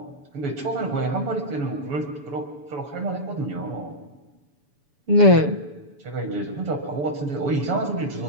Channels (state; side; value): late; left; 7.0 ms